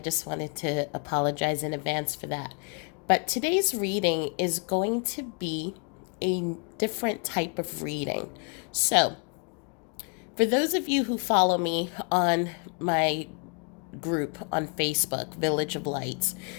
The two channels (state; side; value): quieter; right; 38.8 dB